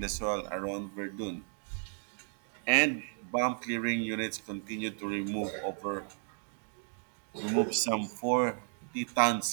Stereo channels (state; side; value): silent; left; 55 dB below the other